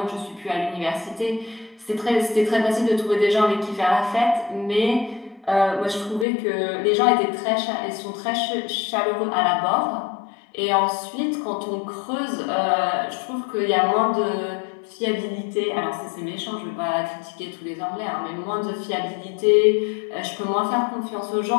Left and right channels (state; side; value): drops out; right; at 6.2 s